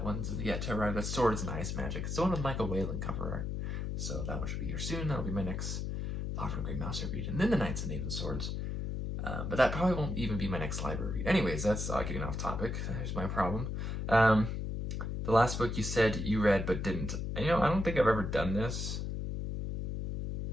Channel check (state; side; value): noise; left; hum, 3 dB below the sound